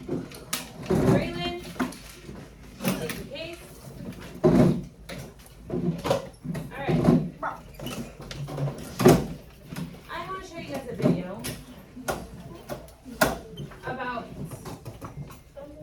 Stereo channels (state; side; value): identical; both; correlation 1.00